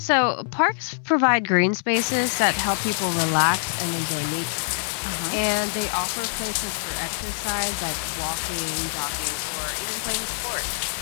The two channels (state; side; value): silent; right; 62 dB below the other